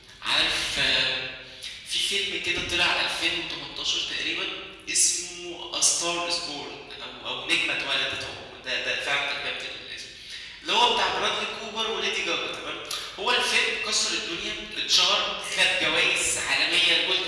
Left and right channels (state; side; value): identical; both; correlation 1.00